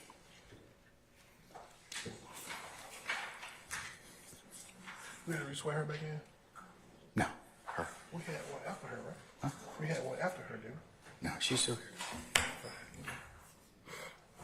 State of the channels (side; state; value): both; identical; correlation 1.00